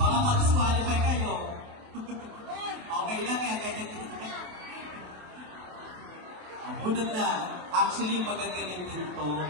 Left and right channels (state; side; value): late; left; 28 ms